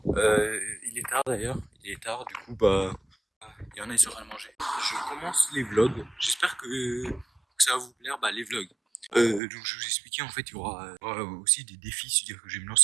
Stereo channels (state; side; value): drops out; left; at 9.4 s